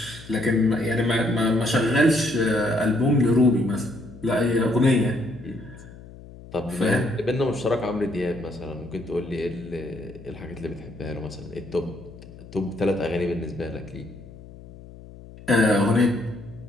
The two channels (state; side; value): noise; left; hum, 18 dB below the sound